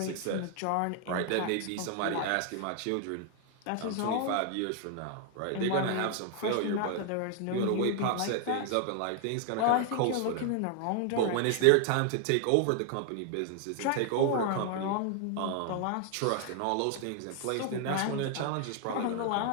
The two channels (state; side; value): different; both; correlation 0.00